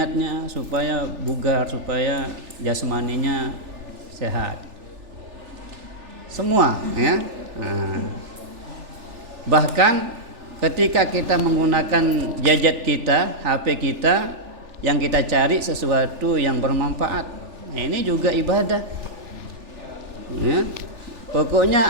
Supaya bugar, supaya jasmaninya sehat. Semua ya. Bahkan ketika kita menggunakan gadget kita, HP kita, yang kita cari sesuatu yang bermanfaat, ini juga ibadah ya.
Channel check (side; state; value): left; late; 3.4 ms